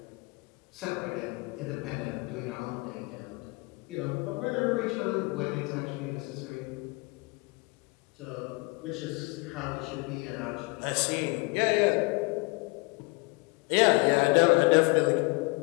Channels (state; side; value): quieter; right; 27.3 dB